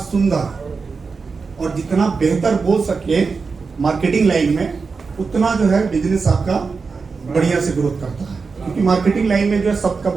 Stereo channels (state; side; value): quieter; left; 4.8 dB